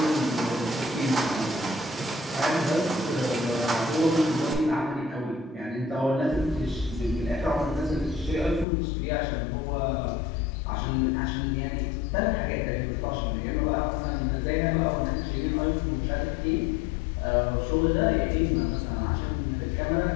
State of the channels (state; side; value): drops out; right; at 8.7 s